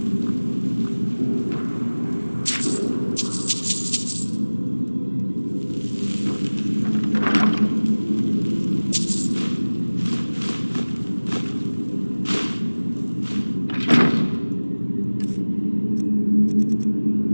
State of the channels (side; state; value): both; inverted; correlation -1.00